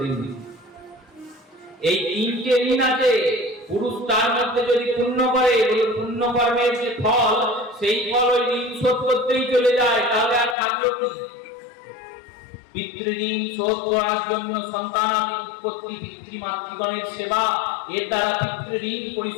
ঋণ। এই 3টে ঋণ আছে। পুরুষ তার মধ্যে যদি পুণ্য করে, ওই পুণ্য কর্মের যে ফল, সেই ফল ওই ঋণ শোধ করতেই চলে যায়, তাহলে আর থাকলো কি? পিতৃঋণ শোধ করার জন্য সন্তানাদি উৎপত্তি, পিতৃমাতৃগণের সেবা, এর দ্বারা পিতৃঋণ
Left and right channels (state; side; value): drops out; right; at 10.6 s